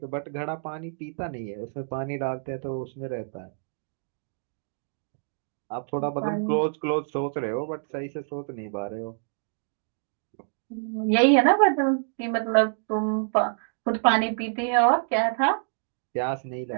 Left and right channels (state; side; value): silent; left; digital silence